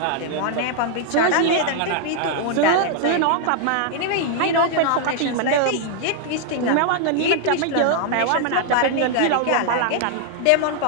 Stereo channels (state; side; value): different; both; correlation 0.00